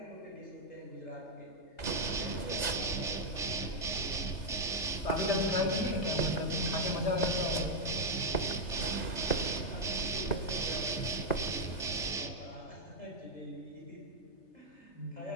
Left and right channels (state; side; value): late; right; 3.3 ms